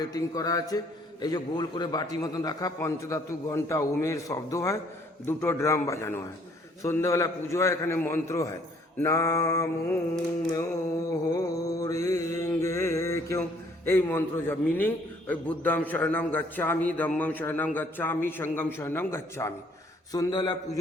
করা আছে। এই যে গোল করে বাটি মতন রাখা, পঞ্চধাতু ঘন্টা ওমের শব্দ হয়, 2টো ড্রাম বাজানো হয়। সন্ধ্যাবেলা পুজো হয়, এখানে মন্ত্র হয়, নাম কেউ এই মন্ত্র যা মিনিং ওই বুদ্ধাম শরণম গচ্ছামি, ধম্মম শরণম গচ্ছামি, সঙ্গম শরণম গচ্ছামি। সন্ধ্যাবেলা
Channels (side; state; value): both; normal; correlation 0.62